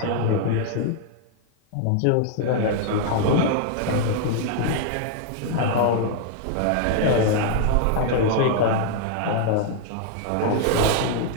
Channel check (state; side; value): different; both; correlation 0.00